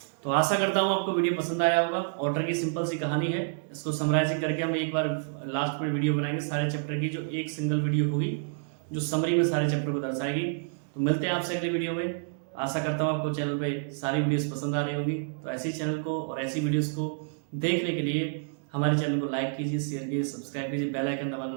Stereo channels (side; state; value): left; silent; digital silence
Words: तो आशा करता हूँ आपको वीडियो पसंद आया होगा। ऑटर की सिंपल सी कहानी है, इसको समराइजिंग करके हम एक बार लास्ट में वीडियो बनाएंगे सारे चैप्टर की, जो एक सिंगल वीडियो होगी जो समरी में सारे चैप्टर को दर्शाएगी। तो मिलते हैं आपसे अगली वीडियो में। आशा करता हूँ आपको चैनल पे सारी वीडियोस पसंद आ रही होगी। तो ऐसी चैनल को और ऐसी वीडियोस को देखने के लिए हमारे चैनल को लाइक कीजिए, शेयर कीजिए, सब्सक्राइब कीजिए, बेल आइकन दबाना